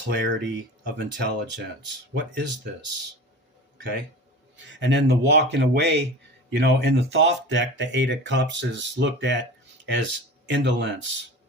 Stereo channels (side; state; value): both; normal; correlation 0.35